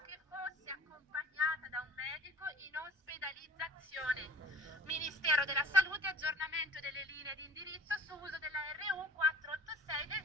che fosse accompagnata da un medico in ospedalizzazione. Ministero della Salute, aggiornamento delle linee di indirizzo su uso della RU486 del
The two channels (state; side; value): normal; both; correlation 0.45